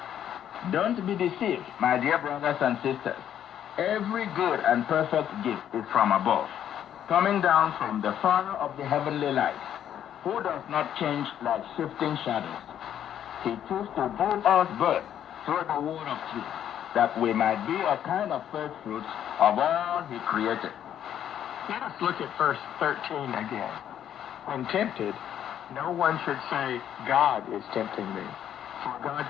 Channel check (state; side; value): quieter; right; 10.1 dB